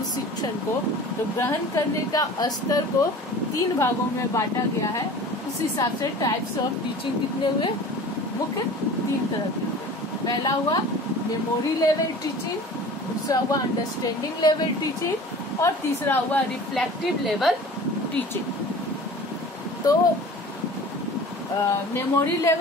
शिक्षण को, तो ग्रहण करने का स्तर को 3 भागों में बांटा गया है। उस हिसाब से टाइप्स ऑफ टीचिंग कितने हुए? मुख्य 3 तरह के। पहला हुआ मेमोरी लेवल टीचिंग, दूसरा हुआ अंडरस्टैंडिंग लेवल टीचिंग और तीसरा हुआ रिफ्लेक्टिव लेवल टीचिंग। तो मेमोरी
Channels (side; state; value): both; normal; correlation 0.41